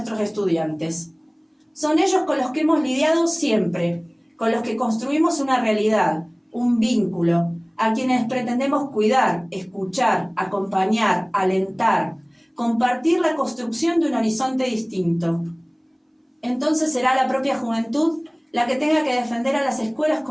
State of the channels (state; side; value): identical; both; correlation 1.00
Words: estudiantes. Son ellos con los que hemos lidiado siempre, con los que construimos una realidad, un vínculo, a quienes pretendemos cuidar, escuchar, acompañar, alentar, compartir la construcción de un horizonte distinto. Entonces será la propia juventud la que tenga que defender a las escuelas